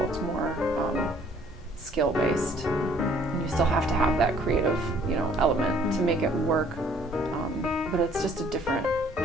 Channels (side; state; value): both; normal; correlation 0.59